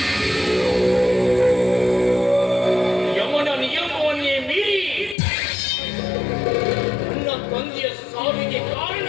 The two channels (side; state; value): right; drops out; at 5.2 s